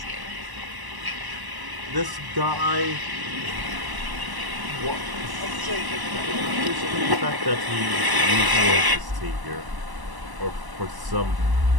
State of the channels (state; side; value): late; left; 1.0 ms